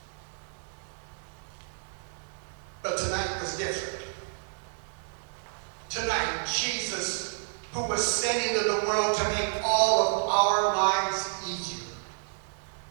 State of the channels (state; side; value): silent; left; digital silence